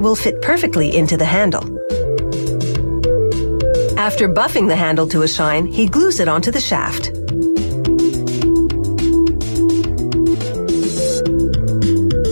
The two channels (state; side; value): inverted; both; correlation -1.00